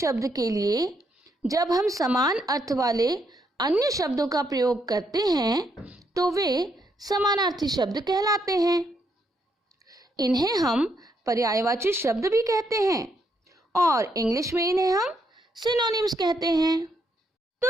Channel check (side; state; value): both; normal; correlation 0.76